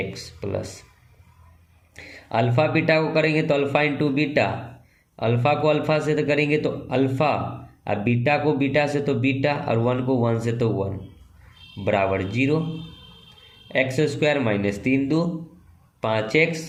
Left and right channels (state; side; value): identical; both; correlation 1.00